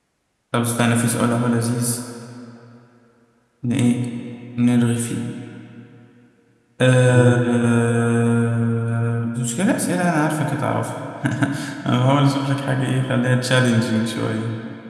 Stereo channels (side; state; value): both; identical; correlation 1.00